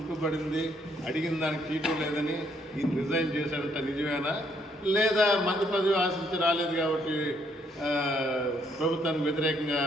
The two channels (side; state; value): both; normal; correlation 0.70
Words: అడిగిన దానికి చీటు లేదని ఈయన రిజైన్ చేశాడంట, నిజమేనా? లేదా మంత్రి పదవి ఆశించి రాలేదు కాబట్టి ప్రభుత్వానికి వ్యతిరేకంగా